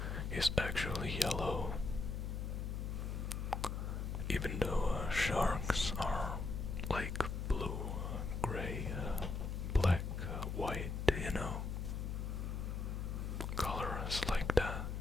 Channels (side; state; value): left; noise; hum, 3 dB below the sound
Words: is actually yellow. Even though sharks are like blue, gray, black, white, colors like that